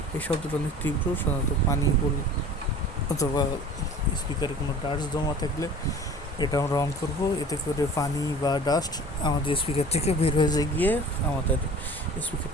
এই শব্দটা অনেক তীব্র, সাধারণত পানি পড়লে অথবা স্পিকারে কোনো ডাস্ট জমা থাকলে এটা আমরা অন করব। এতে করে পানি বা ডাস্ট আমাদের স্পিকার থেকে বের হয়ে গিয়ে আমাদের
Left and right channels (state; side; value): normal; both; correlation 0.44